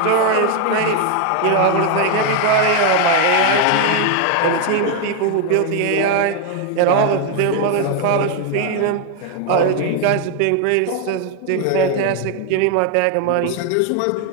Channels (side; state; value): both; different; correlation 0.01